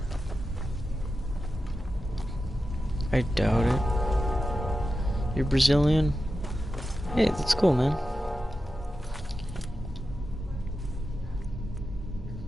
I doubt it. You're Brazilian? Hey, that's cool, man.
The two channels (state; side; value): normal; both; correlation 0.91